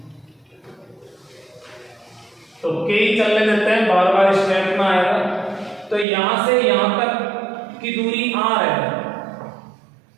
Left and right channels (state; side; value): drops out; left; at 6.1 s